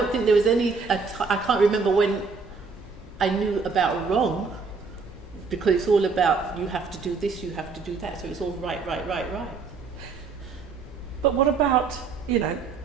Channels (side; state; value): left; quieter; 4.8 dB